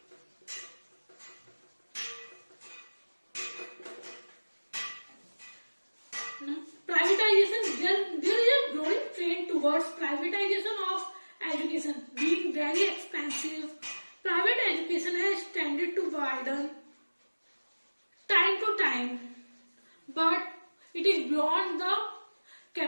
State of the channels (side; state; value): both; inverted; correlation -1.00